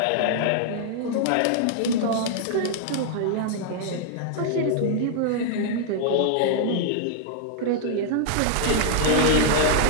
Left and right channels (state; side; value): different; both; correlation -0.01